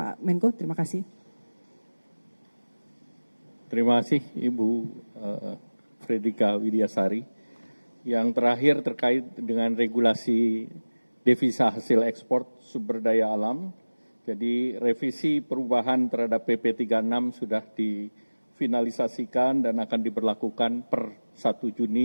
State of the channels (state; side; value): inverted; both; correlation -1.00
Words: Menko, terima kasih. Terima kasih Ibu Fredrika Widiasari. Yang terakhir terkait dengan regulasi devisa hasil ekspor sumber daya alam. Jadi revisi perubahan terhadap PP 36 sudah difinalisasikan dan akan diberlakukan per 1